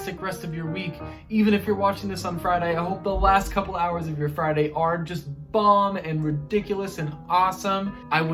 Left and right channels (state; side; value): identical; both; correlation 1.00